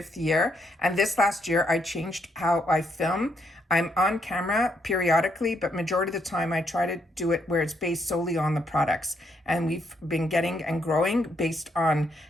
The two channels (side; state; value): both; normal; correlation 0.75